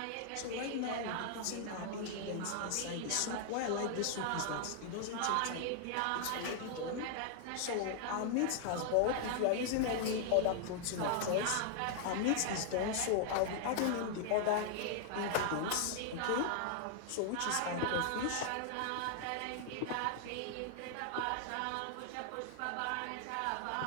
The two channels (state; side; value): different; both; correlation 0.00